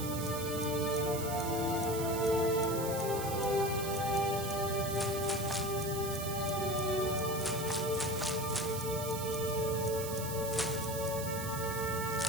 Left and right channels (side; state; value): right; noise; hiss, 8 dB below the sound